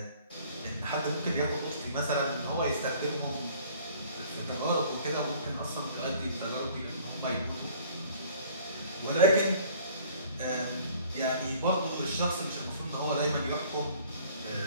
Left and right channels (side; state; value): both; inverted; correlation -0.53